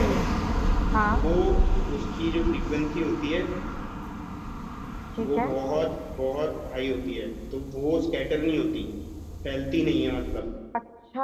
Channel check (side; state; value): both; identical; correlation 1.00